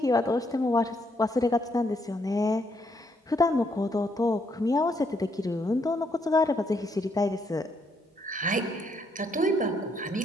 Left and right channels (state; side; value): normal; both; correlation 0.74